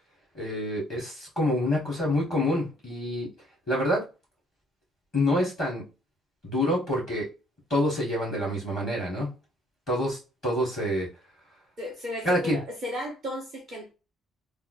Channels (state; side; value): normal; both; correlation 0.62